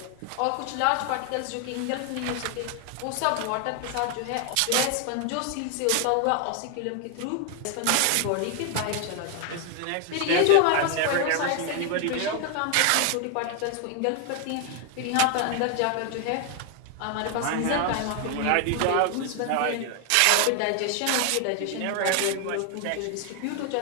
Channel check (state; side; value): different; both; correlation 0.00